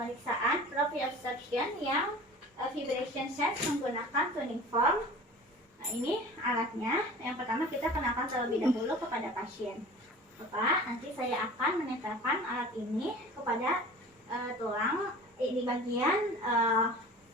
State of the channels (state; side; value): normal; both; correlation 0.41